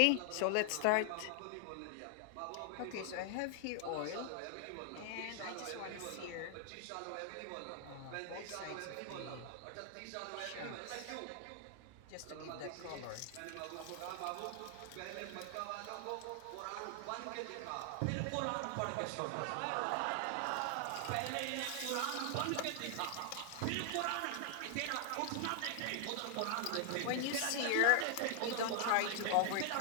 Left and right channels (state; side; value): different; both; correlation 0.00